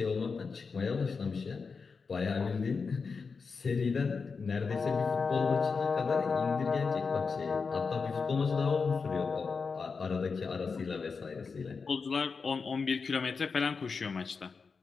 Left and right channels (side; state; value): right; quieter; 5.0 dB